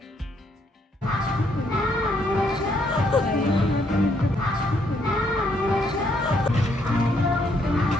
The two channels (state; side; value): normal; both; correlation 0.71